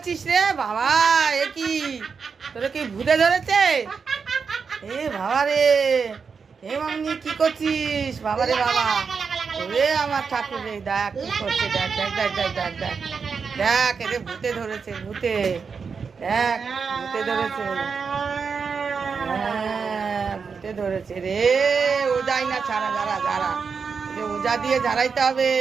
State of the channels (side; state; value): left; quieter; 5.6 dB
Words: রে বাবা? এ কি, তোরে কি ভূতে ধরেছে? এ বাবা রে, এ মামনি কি করছিস বাবা রে বাবা? ওরে আমার ঠাকুর রে, দেখ কি করছে, দেখ দেখ দেখ দেখ দেখ দেখ দেখ, এরে ভূতে ধরেছে, ভূতে, দেখ ভূতে ধরেছে, হ্যাঁ ভূতে ধরেছে রে। ও যাই না, ছাড়া, যারা যারা, ওজা দিয়ে ঝাড়াইতে হবে,